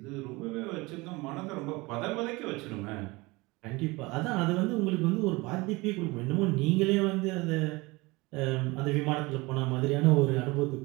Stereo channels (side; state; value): left; quieter; 23.3 dB